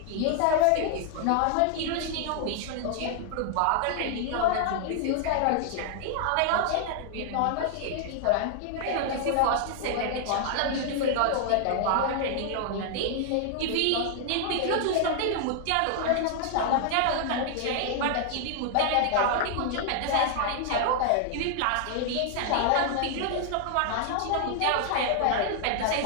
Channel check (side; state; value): both; different; correlation 0.00